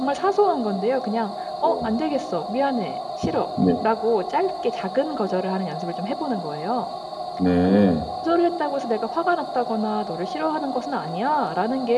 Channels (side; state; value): both; identical; correlation 1.00